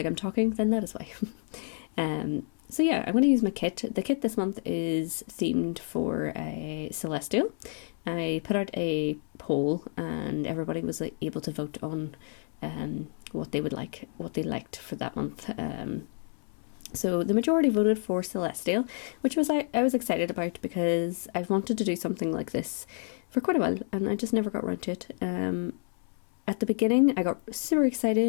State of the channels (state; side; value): silent; right; 58 dB below the other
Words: I'm talking, then that is why. So yeah, I'm going to use my kit. The kit this month is themed for a Celestial. I put out a poll and everybody was able to vote on what they liked for that month. So the majority voted for Celestial, which was I was excited about because I've wanted to do something like this for quite a while and I just never got around to it. At the beginning I got super